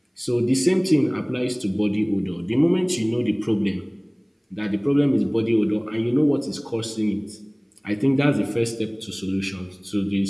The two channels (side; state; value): both; identical; correlation 1.00